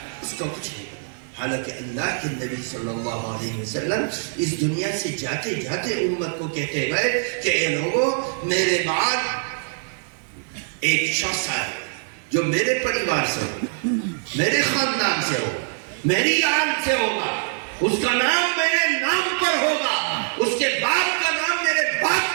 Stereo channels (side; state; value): left; silent; 63 dB below the other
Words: اس کا کچھ نہیں۔ حالانکہ اللہ کے نبی صلی اللہ علیہ وسلم اس دنیا سے جاتے جاتے امت کو کہتے گئے کہ اے لوگوں، میرے بعد ایک شخص آئے جو میرے پریوار سے ہو، میرے خاندان سے ہو، میری آل سے ہوگا، اس کا نام میرے نام پر ہوگا، اس کے باپ کا نام میرے